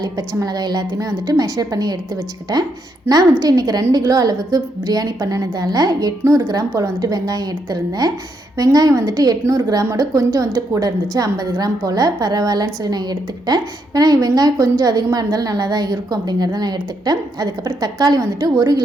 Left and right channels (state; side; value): normal; both; correlation 0.78